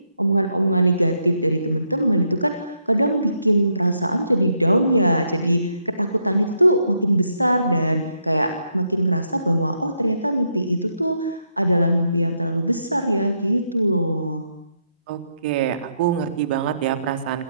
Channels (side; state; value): both; inverted; correlation -0.78